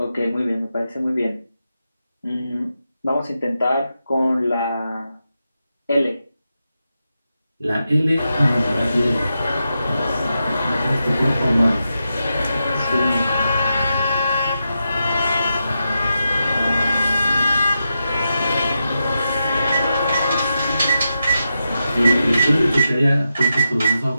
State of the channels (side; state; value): both; inverted; correlation -0.88